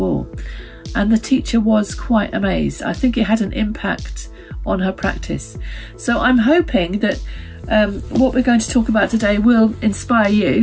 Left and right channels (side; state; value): both; identical; correlation 1.00